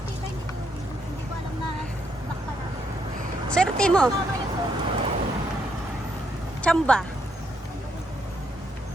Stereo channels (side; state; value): both; normal; correlation 0.75